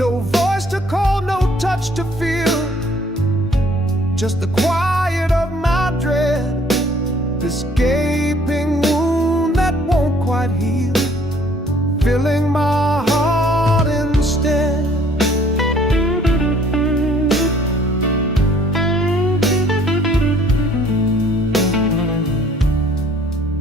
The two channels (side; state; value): both; normal; correlation 0.59